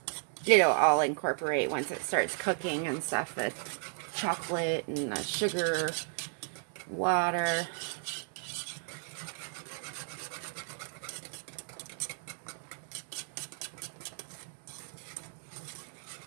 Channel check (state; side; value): silent; left; 55 dB below the other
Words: It'll all incorporate once it starts cooking and stuff, the chocolate and the sugar, water.